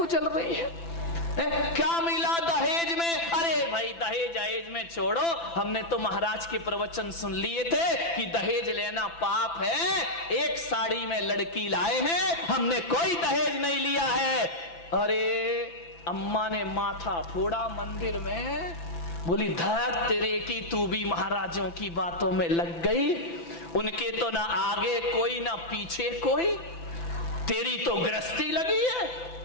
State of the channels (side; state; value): right; late; 5.9 ms